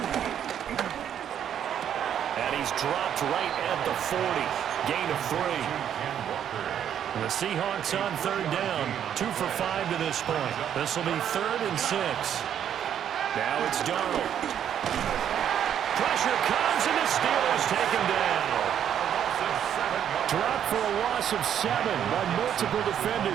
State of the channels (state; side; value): quieter; left; 9.5 dB